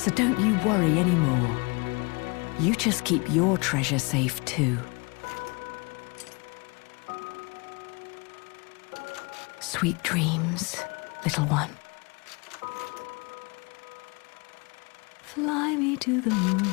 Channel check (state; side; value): quieter; right; 29.3 dB